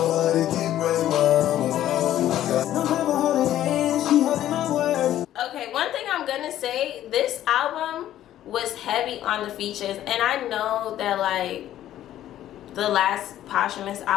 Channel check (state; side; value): quieter; right; 12.5 dB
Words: Okay, one thing I'm gonna say, this album was heavy on the features, and I know that like the last posthumous